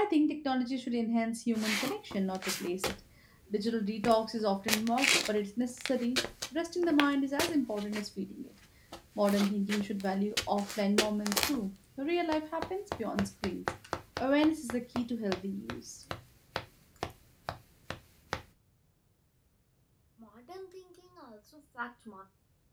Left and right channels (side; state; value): both; identical; correlation 1.00